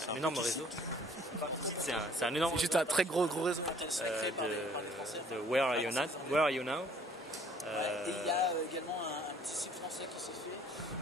réseau. C'est un énorme. C'est juste un très gros réseau. De Where Are You Now. Et il y a également un petit site français qui s'est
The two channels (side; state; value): both; normal; correlation 0.58